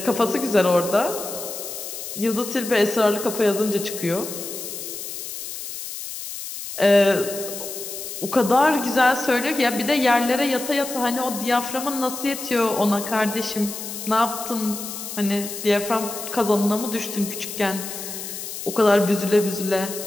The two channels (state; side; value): noise; left; hiss, 8 dB below the sound